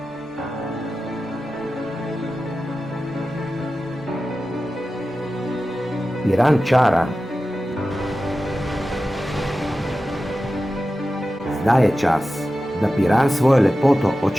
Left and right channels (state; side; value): normal; both; correlation 0.93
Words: Piran čara. Zdaj je čas, da Piran svojo lepoto